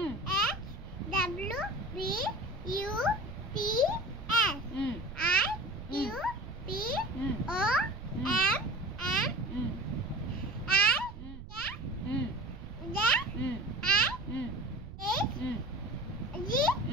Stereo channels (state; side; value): noise; right; rumble, 12 dB below the sound